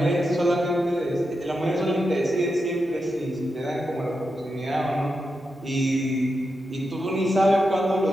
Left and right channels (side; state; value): both; normal; correlation 0.87